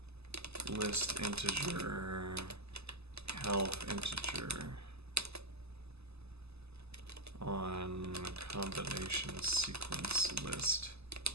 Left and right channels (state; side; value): late; left; 0.79 ms